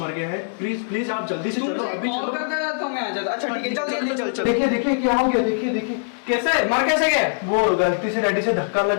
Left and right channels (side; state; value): right; silent; digital silence